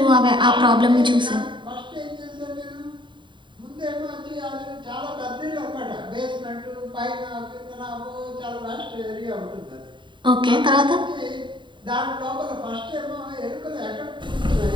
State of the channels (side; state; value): left; late; 0.23 ms